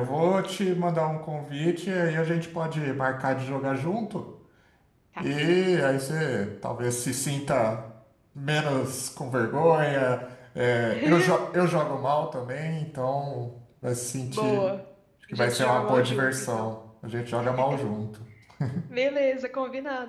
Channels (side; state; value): both; identical; correlation 1.00